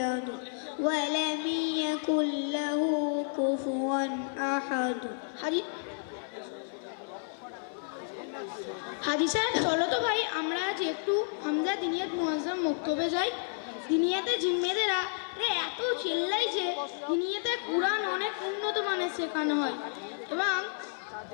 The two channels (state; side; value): silent; right; 55 dB below the other